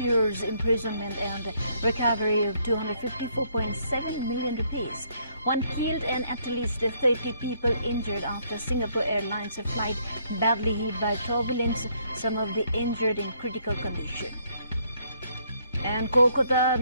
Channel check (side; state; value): both; inverted; correlation -0.69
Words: years imprisonment and recovery of 254.7 million rupees. One killed and at least 30 people injured after Singapore Airlines flight badly hit by turbulence. Some of the injured in critical condition. And Kolkata